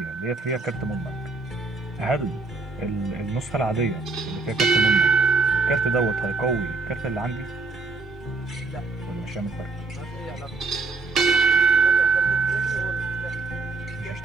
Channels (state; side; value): quieter; left; 3.9 dB